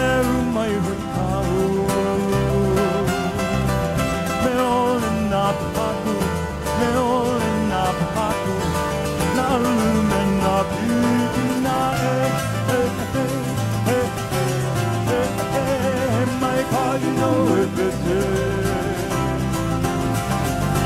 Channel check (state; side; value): identical; both; correlation 1.00